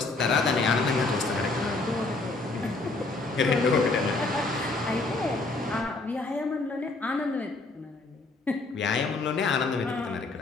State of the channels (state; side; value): quieter; right; 3.4 dB